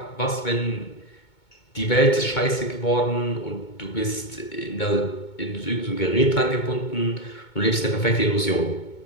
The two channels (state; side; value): late; right; 2.2 ms